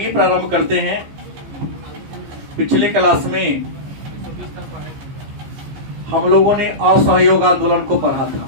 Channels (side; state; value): left; late; 15 ms